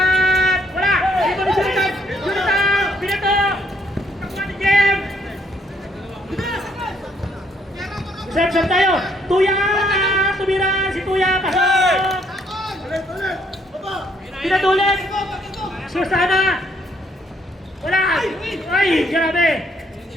Wala. Ito ni Jonathan. Jonathan. Binato. Kakuha ni Jem. Set tayo. Tuya. Tumira. Si Tuya. Pasok. Pinatulit! Susana! Wala! Ay! Grabe!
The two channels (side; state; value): both; normal; correlation 0.69